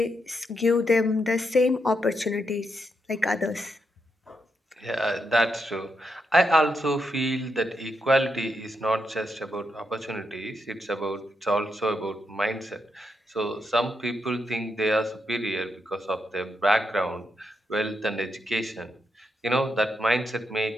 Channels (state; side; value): normal; both; correlation 0.82